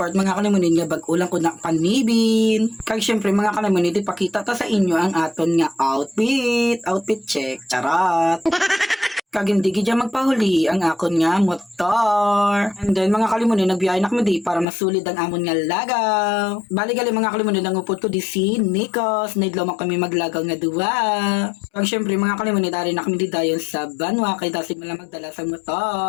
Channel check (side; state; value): right; drops out; at 14.7 s